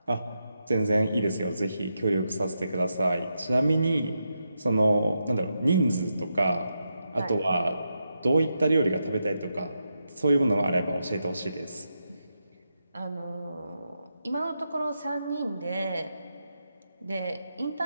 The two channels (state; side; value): inverted; both; correlation -0.85